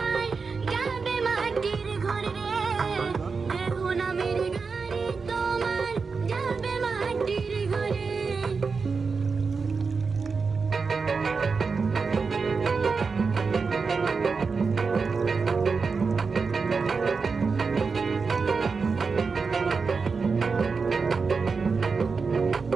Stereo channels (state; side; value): quieter; left; 4.9 dB